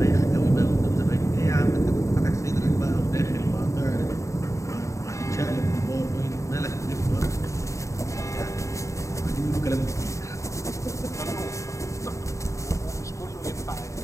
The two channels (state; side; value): late; right; 0.15 ms